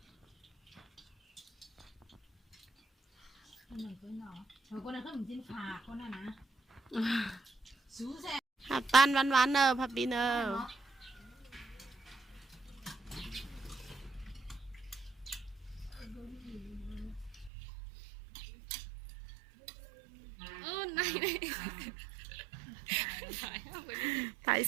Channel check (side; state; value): left; drops out; at 17.5 s